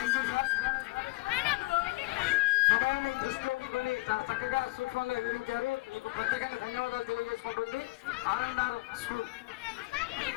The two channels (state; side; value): quieter; right; 22.9 dB